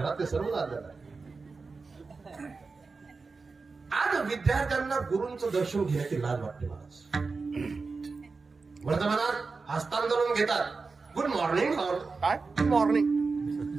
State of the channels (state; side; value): quieter; left; 4.3 dB